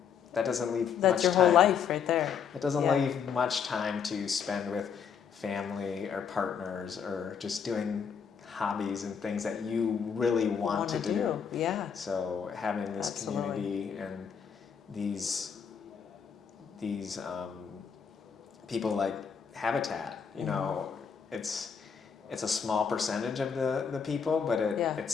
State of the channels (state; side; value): quieter; right; 7.0 dB